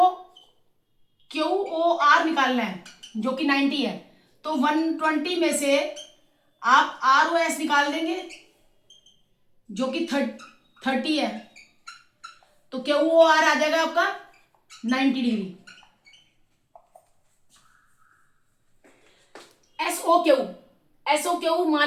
क्यू ओ आर निकालना है जो कि 90 है, तो 120 में से आप आर ओ एस निकाल देंगे जो कि 30 है, तो क्यू ओ आर आ जाएगा आपका 90 डिग्री। एसओ क्यू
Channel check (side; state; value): both; identical; correlation 1.00